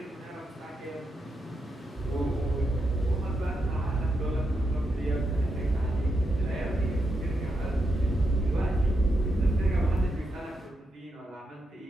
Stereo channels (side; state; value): both; normal; correlation 0.84